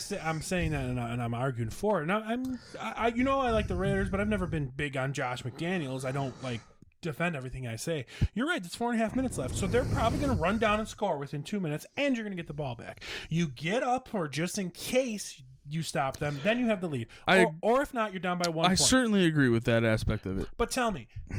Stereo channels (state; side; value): identical; both; correlation 1.00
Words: saying that and I'm arguing for it. And I like the Raiders, but I've never been big on Josh McDaniels. I don't defend everything I say. You're right. There's 4.5 minutes left, so they're probably going to run down and score within 2 minutes, and you're going to get the ball back. You get up, or just in case you stop them, then you have the lead. Or if not, you're down by 1 point. I certainly agree with that aspect of it. But tell me,